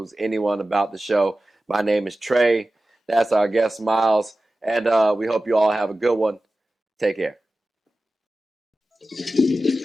about the show. My name is Trey. That's our guest, Miles. And we hope you all have a good one. Take care.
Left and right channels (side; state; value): both; normal; correlation 0.95